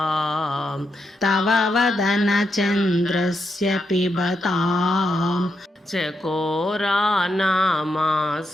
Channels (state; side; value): normal; both; correlation 0.83